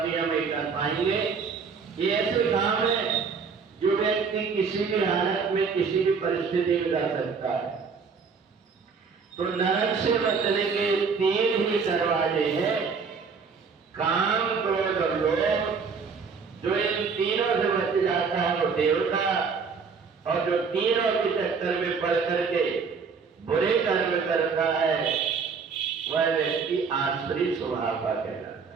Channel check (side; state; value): left; quieter; 5.5 dB